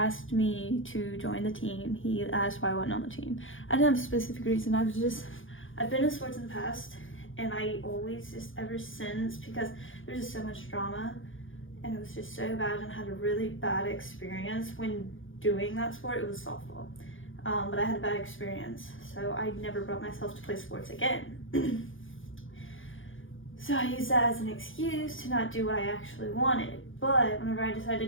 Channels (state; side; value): late; right; 0.58 ms